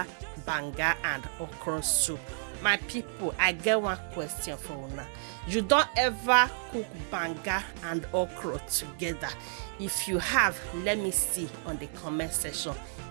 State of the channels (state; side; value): silent; left; digital silence